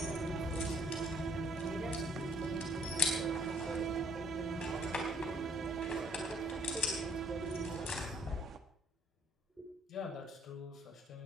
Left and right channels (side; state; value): both; normal; correlation 0.64